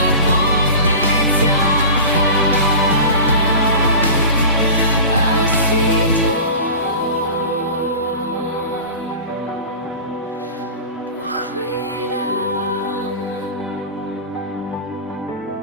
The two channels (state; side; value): inverted; both; correlation -0.34